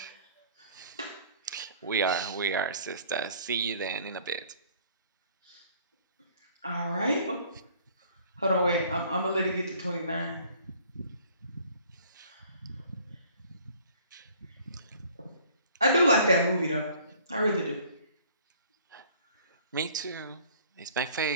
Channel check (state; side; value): inverted; both; correlation -0.55